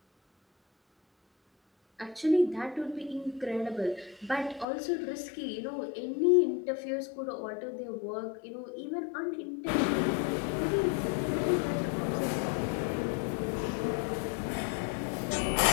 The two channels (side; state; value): right; drops out; at 4.7 s